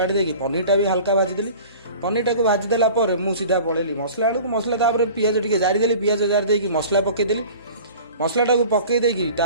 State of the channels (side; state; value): both; inverted; correlation -0.42